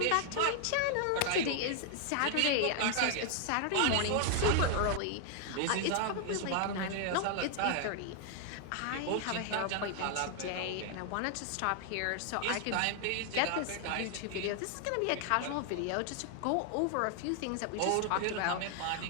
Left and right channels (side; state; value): both; different; correlation 0.00